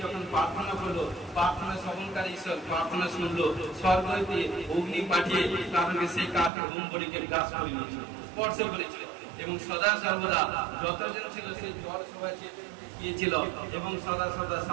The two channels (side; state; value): left; drops out; at 6.5 s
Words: যখন প্রার্থনা করলো, প্রার্থনা শ্রবণকারী ঈশ্বর প্রার্থনা শুনলো, স্বর্গ হইতে অগ্নি পাঠিয়ে কারণ সেই কাঠের হোমবলিকে গ্রাস করে নিয়েছিল, স্পর্শ করেছিল। এবং সদা সর্বদা যতজন ছিল সেই জল সবাই গিয়েছিল এবং সদা সর্বদা